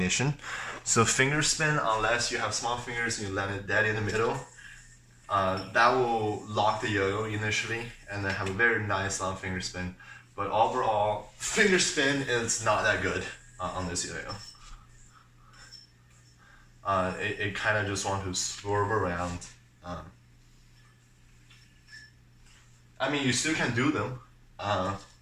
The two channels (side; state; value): both; identical; correlation 1.00